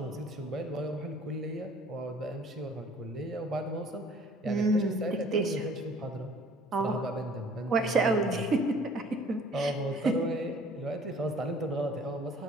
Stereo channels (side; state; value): both; normal; correlation 0.54